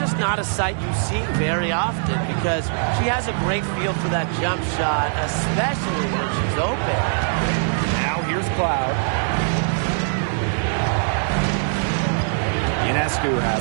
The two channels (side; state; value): left; silent; 64 dB below the other